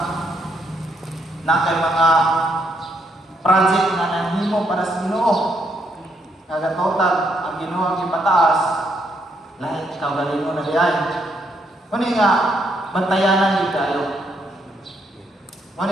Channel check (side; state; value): both; normal; correlation 0.75